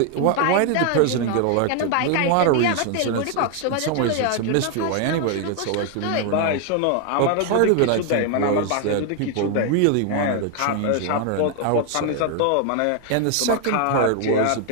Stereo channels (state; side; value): different; both; correlation 0.00